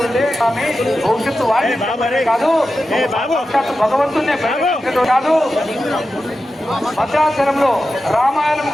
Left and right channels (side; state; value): both; normal; correlation 0.92